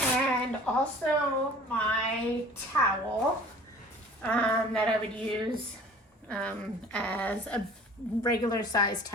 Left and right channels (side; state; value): both; normal; correlation 0.46